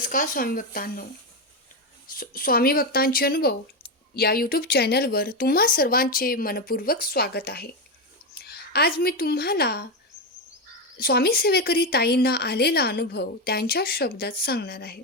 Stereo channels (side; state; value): both; normal; correlation 0.11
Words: स्वामी भक्तांनो. स्वामी भक्तांचे अनुभव या यूट्यूब चॅनलवर तुम्हा सर्वांचे मनपूर्वक स्वागत आहे. आज मी तुम्हाला स्वामी सेवेकरी ताईंना आलेला अनुभव त्यांच्या शब्दात सांगणार आहे.